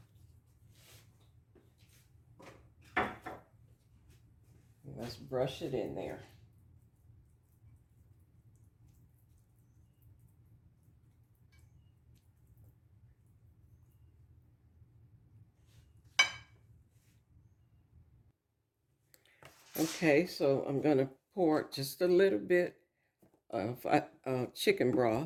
Let's brush it in there. Okay, so I'm going to pour just a little bit of chicken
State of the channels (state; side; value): identical; both; correlation 1.00